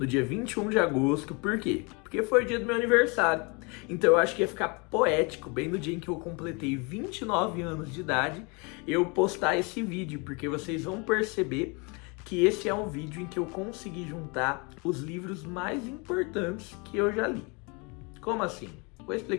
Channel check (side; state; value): right; quieter; 30.6 dB